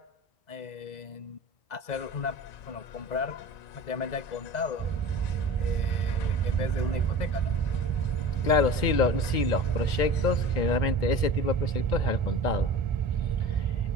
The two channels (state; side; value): late; right; 2.1 ms